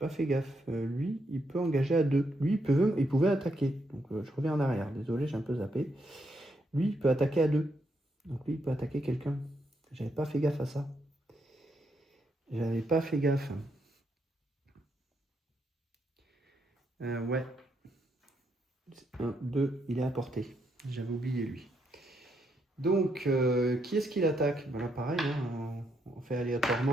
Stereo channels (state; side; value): normal; both; correlation 0.78